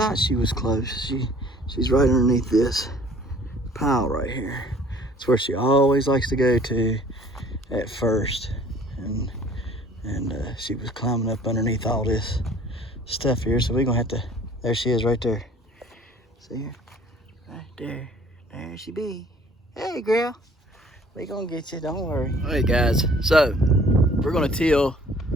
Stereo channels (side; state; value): both; normal; correlation 0.53